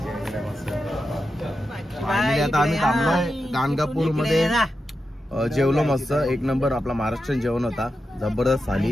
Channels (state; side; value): normal; both; correlation 0.89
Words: वगैरे मस्त. फायनली आता आम्ही थांबलोय गाणगापूरमध्ये. जेवलो मस्त. एक नंबर आपला महाराष्ट्रीयन जेवण होता. जबरदस्त